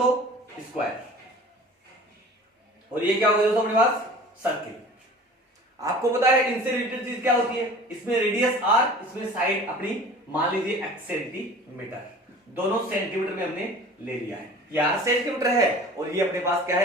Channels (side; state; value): both; normal; correlation 0.44